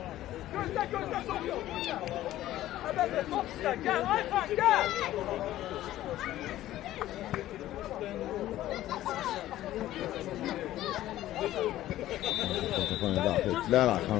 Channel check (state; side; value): quieter; right; 14.2 dB